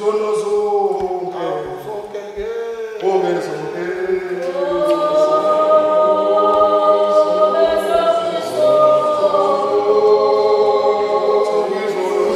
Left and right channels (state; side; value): identical; both; correlation 1.00